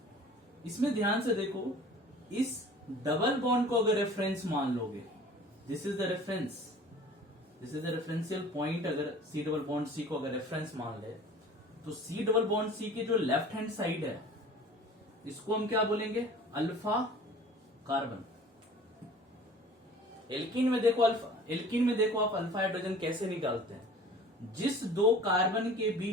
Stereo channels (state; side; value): normal; both; correlation 0.45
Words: इसमें ध्यान से देखो, इस डबल बॉन्ड को अगर रेफरेंस मान लोगे, this is the reference, this is the referential point. अगर C डबल बॉन्ड C को अगर रेफरेंस मान ले, तो C डबल बॉन्ड C के जो लेफ्ट हैंड साइड है, इसको हम क्या बोलेंगे, अल्फा कार्बन। एल्किन में देखो आप अल्फा हाइड्रोजन कैसे निकालते हैं, जिस दो कार्बन के